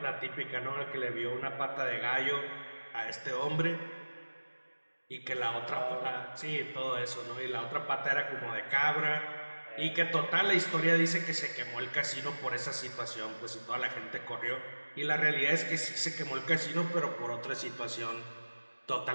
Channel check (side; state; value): both; inverted; correlation -1.00